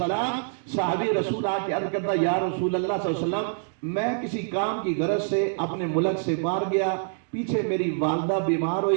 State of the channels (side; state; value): left; silent; digital silence